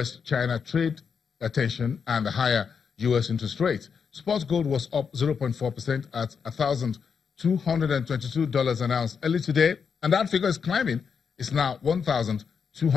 trade tension and the higher U.S. interest rates. Spot gold was up 0.4% at $1,222 an ounce early today, and that figure is climbing. It's now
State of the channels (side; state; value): right; quieter; 6.3 dB